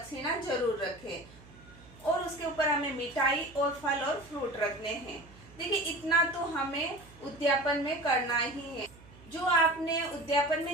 जरूर रखें, और उसके ऊपर हमें मिठाई और फल और फ्रूट रखने हैं। देखिए, इतना तो हमें उद्यापन में करना ही है। जो आपने उद्यापन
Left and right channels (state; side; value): noise; right; hum, 22 dB below the sound